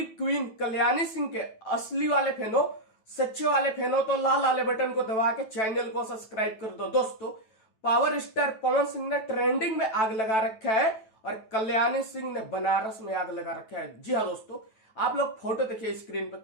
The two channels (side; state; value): right; late; 9.2 ms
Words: queen Kalyani Singh के असली वाले फैन हो, सच्चे वाले फैन हो, तो लाल वाले बटन को दबा के चैनल को सब्सक्राइब कर दो। दोस्तों, पावर स्टार पवन सिंह ने ट्रेंडिंग में आग लगा रखा है और कल्याणी सिंह ने बनारस में आग लगा रखा है। जी हाँ दोस्तों, आप लोग फोटो देखिए स्क्रीन पर,